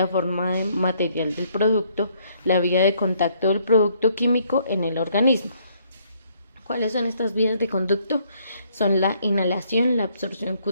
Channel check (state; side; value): inverted; both; correlation -0.67